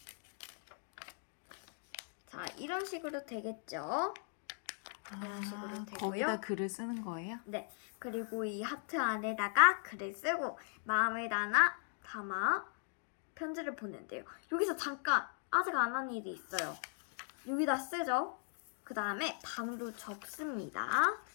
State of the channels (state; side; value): silent; right; 52 dB below the other